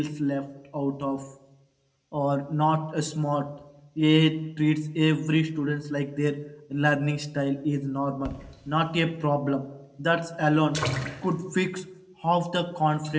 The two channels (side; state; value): both; identical; correlation 1.00